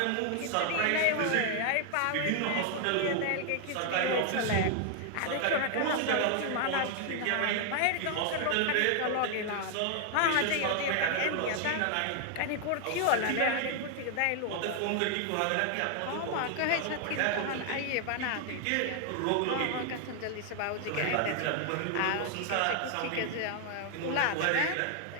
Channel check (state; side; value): different; both; correlation 0.00